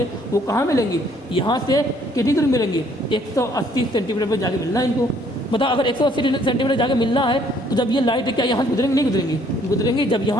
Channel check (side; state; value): both; normal; correlation 0.63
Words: वो कहाँ मिलेंगी, यहाँ से कितनी दूर मिलेंगी 180 सेंटीमीटर पर जाके मिलना है इनको। बताओ अगर 180 सेंटीमीटर जाके मिलना है तो जब ये लाइट क्या यहाँ से गुजरेंगी नहीं गुजरेंगी, जब